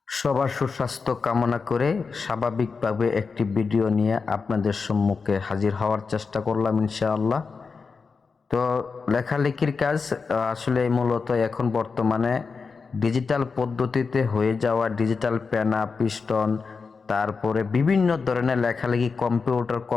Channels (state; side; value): quieter; right; 4.9 dB